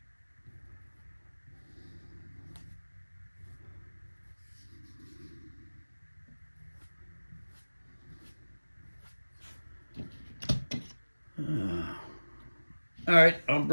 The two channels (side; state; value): both; inverted; correlation -1.00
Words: All right, I'll